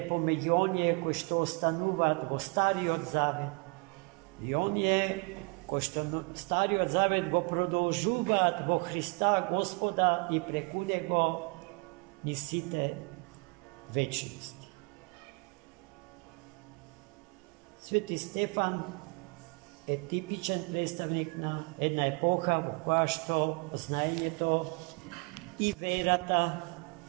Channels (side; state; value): left; quieter; 31.2 dB